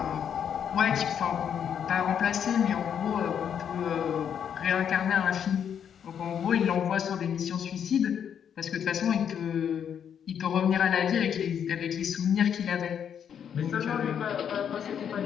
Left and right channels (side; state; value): right; quieter; 8.3 dB